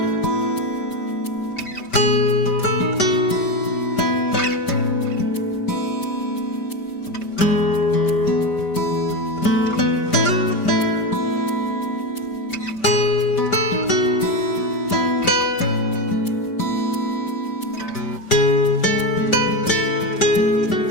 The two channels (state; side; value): late; right; 5.1 ms